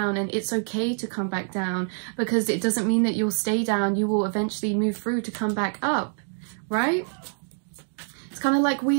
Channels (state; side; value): silent; left; 61 dB below the other